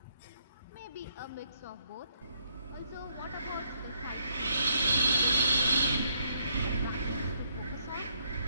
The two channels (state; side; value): inverted; both; correlation -0.71